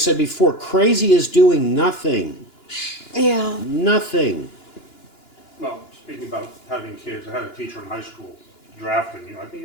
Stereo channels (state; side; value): late; right; 2.9 ms